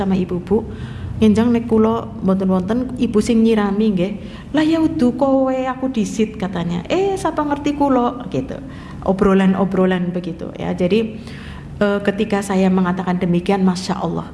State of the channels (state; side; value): identical; both; correlation 1.00